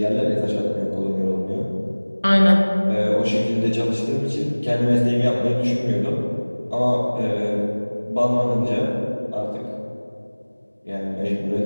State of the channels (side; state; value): both; inverted; correlation -1.00